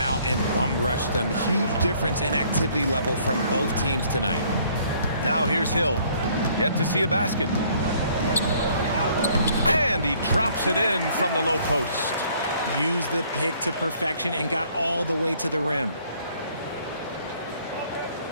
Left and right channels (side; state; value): both; inverted; correlation -0.61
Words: out and bum-rushed them. Huge difference in activity level from both teams tonight. Now here's Hill. Yet to see a basket. And he drops it in from the low post. Used the pick to perfection and got all the way to the rim.